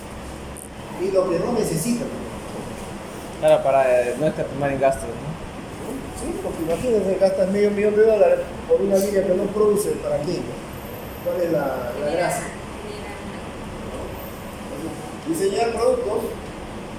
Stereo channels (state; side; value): identical; both; correlation 1.00